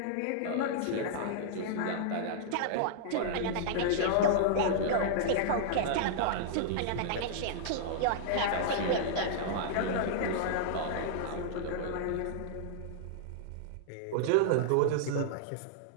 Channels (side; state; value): both; different; correlation -0.01